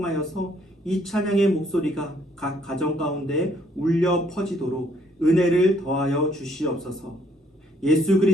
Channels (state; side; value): normal; both; correlation 0.66